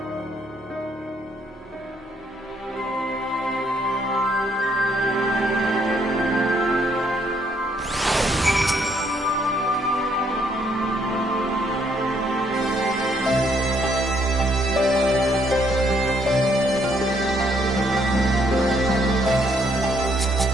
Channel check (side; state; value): both; normal; correlation 0.70